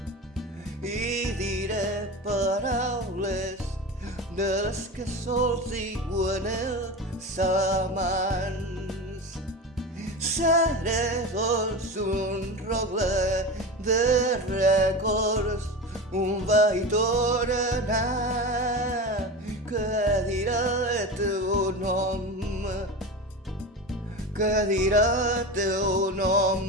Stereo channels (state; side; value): normal; both; correlation 0.26